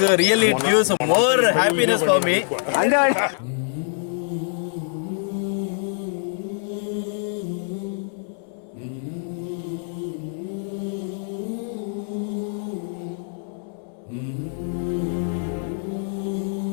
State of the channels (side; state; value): right; silent; digital silence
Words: really it gives more happiness for me.